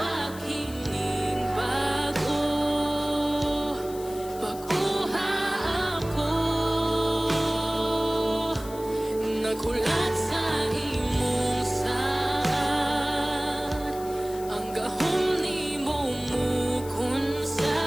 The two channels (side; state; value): left; noise; hiss, 17 dB below the sound